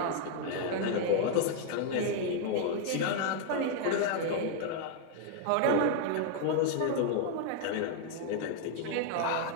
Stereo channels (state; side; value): different; both; correlation 0.00